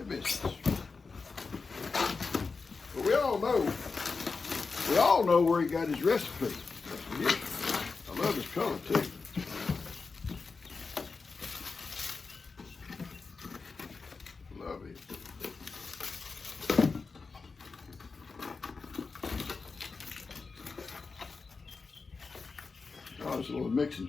biscuits. But we all know where he got his recipe. I love his color too. Love it. Oh, it's a little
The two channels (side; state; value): right; quieter; 4.5 dB